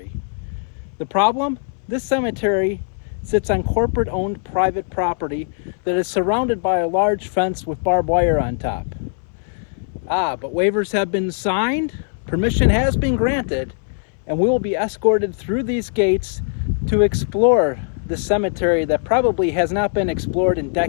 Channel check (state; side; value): silent; right; 61 dB below the other